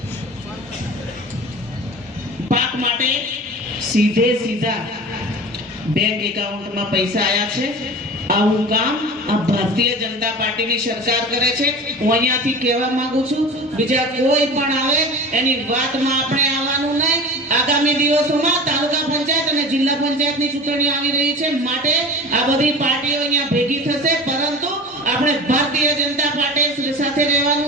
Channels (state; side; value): normal; both; correlation 0.35